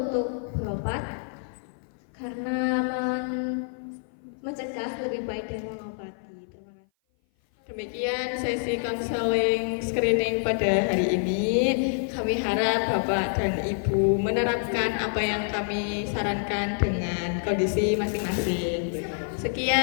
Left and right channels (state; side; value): silent; right; 56 dB below the other